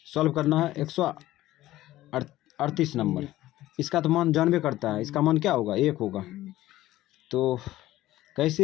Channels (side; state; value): right; quieter; 15.5 dB